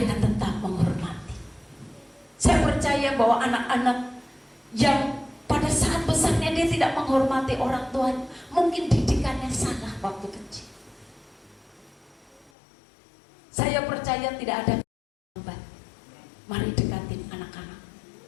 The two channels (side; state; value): right; drops out; at 12.5 s